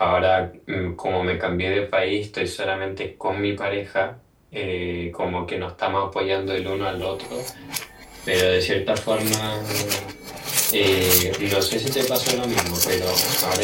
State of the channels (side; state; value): both; identical; correlation 1.00